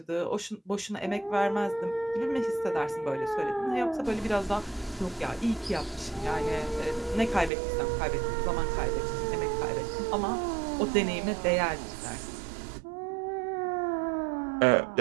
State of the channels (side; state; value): left; drops out; at 7.5 s